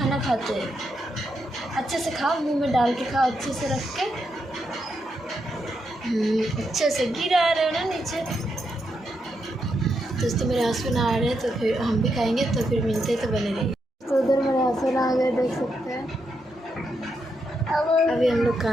खाते हैं। अच्छे से खाओ, मुंह में डाल के खाओ, अच्छे से रख के, अच्छे से। गिरा रहे हो ना नीचे। दोस्तों मेरे हस्बैंड आ रहे हैं तो फिर हम भी खाएंगे, तो फिर मिलते तो बने रहिए। तो उधर मेरे हस्बैंड आ गए, देख सकते हैं। अभी हम लोग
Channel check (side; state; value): both; normal; correlation 0.82